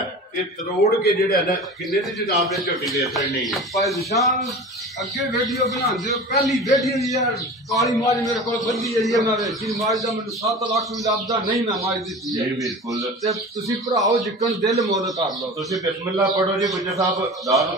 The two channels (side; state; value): both; normal; correlation 0.35